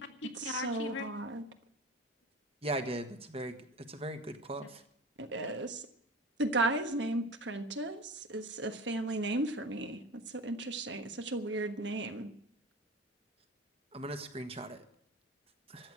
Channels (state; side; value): normal; both; correlation 0.33